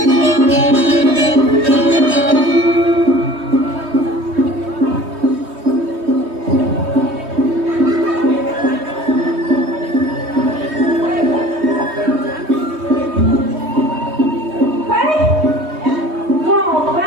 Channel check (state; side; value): late; left; 3.2 ms